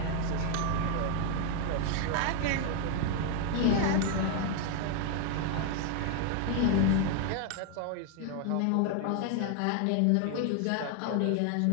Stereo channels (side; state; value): both; different; correlation 0.00